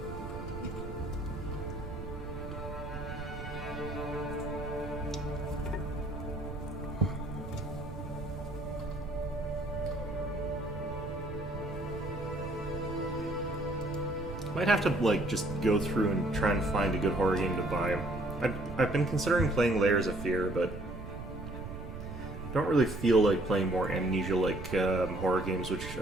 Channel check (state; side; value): noise; right; rumble, 10 dB below the sound